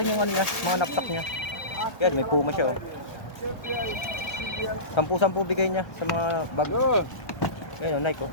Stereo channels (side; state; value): right; late; 1.3 ms